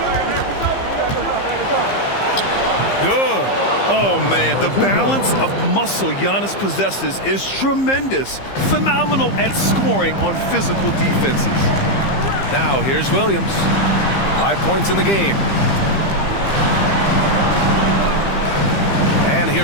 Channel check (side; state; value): right; late; 15 ms